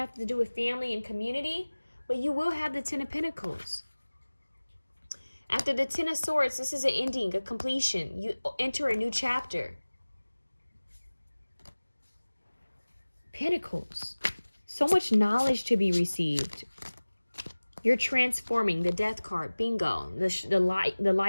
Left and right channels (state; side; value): inverted; both; correlation -1.00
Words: to do with family and community, but you will have the 10 of Pentacles. After the 10 of Swords, this is an ending, a completion. You enter a new chapter. Pentacles. So much knowledge to be received. You're transforming. The Death card. Bingo. The light